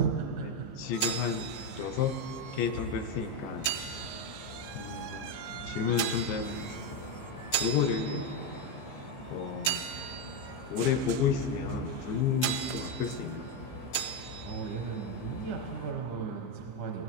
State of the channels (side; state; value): right; late; 15 ms